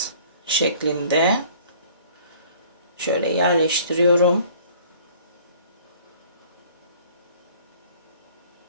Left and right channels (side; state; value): both; inverted; correlation -0.52